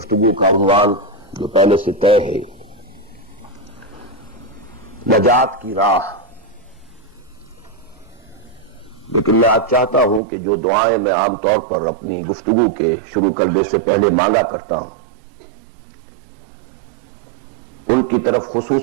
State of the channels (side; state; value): left; drops out; at 10.2 s